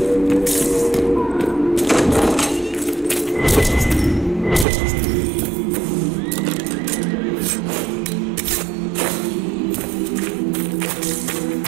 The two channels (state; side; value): drops out; left; at 4.7 s